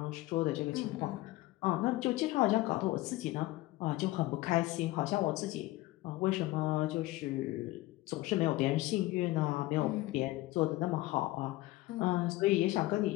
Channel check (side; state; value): right; quieter; 18.4 dB